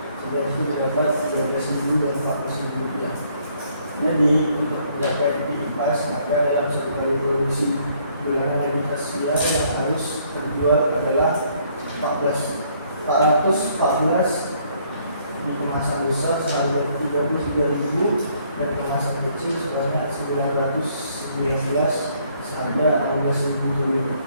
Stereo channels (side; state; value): both; inverted; correlation -0.66